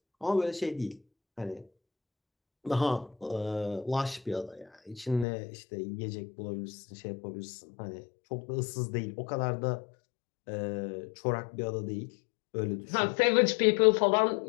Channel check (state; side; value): drops out; right; at 5.2 s